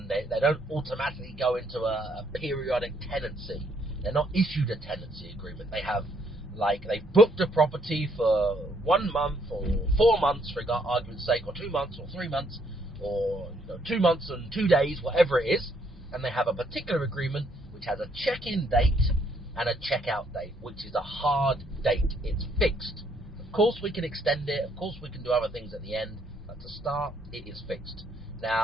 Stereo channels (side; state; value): both; normal; correlation 0.69